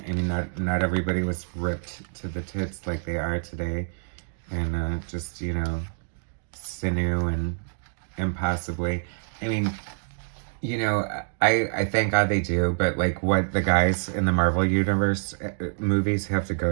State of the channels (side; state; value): left; silent; digital silence